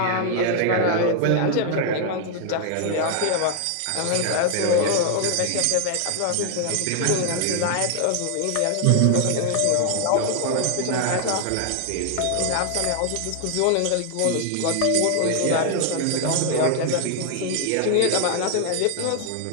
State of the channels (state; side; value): different; both; correlation 0.00